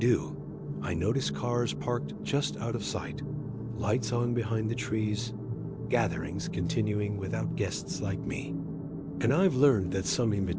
I notice cars parked just out of sight, lights on behind the trees, gatherings continuing without guests like me. And I've learned that some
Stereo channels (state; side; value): identical; both; correlation 1.00